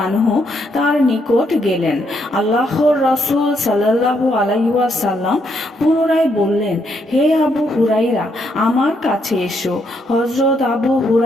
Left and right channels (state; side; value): normal; both; correlation 0.75